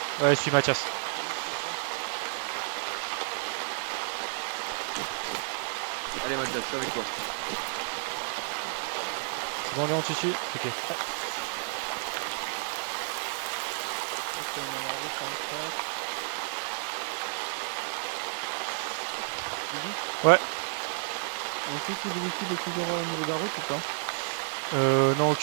Ouais, je suis Mathias. Allez Mathias, je suis avec toi. C'est bon Léon, tu suis? Ok. Ouais. Ouais. On sait que le véhicule est toujours au niveau de la route ou pas? Non,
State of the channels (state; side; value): silent; left; digital silence